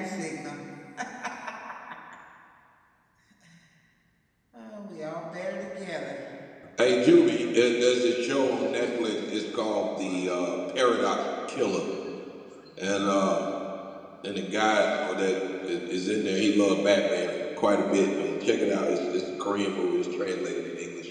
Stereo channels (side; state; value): both; identical; correlation 1.00